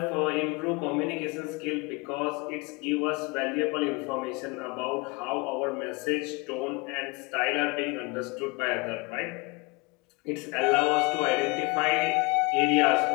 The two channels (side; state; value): right; quieter; 26.9 dB